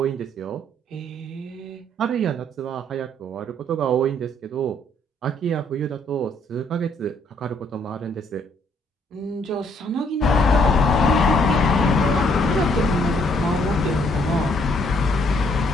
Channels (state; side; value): normal; both; correlation 0.67